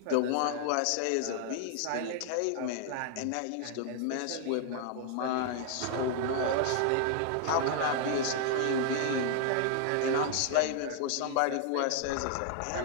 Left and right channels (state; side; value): different; both; correlation 0.00